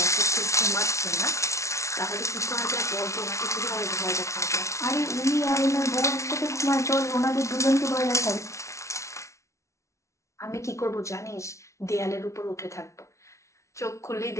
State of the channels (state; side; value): late; right; 0.14 ms